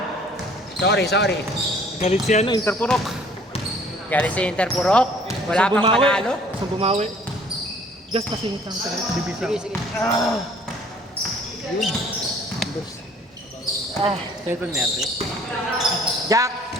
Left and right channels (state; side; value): normal; both; correlation 0.55